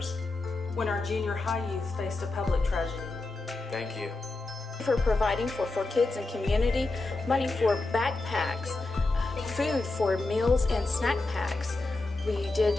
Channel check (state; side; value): quieter; right; 3.2 dB